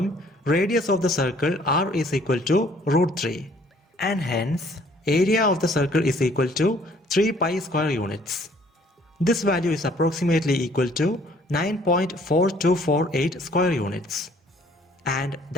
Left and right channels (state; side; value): normal; both; correlation 0.59